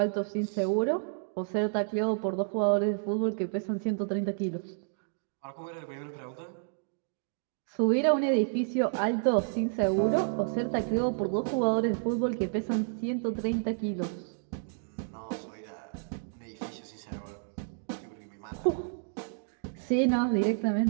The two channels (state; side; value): silent; left; digital silence